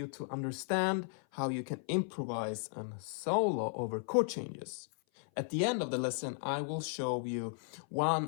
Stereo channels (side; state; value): right; silent; 54 dB below the other